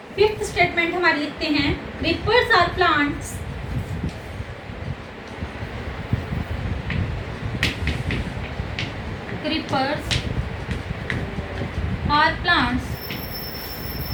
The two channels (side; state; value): both; identical; correlation 1.00